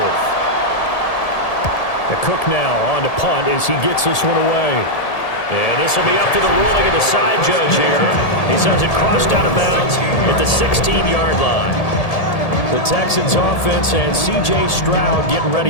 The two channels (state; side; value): late; right; 1.8 ms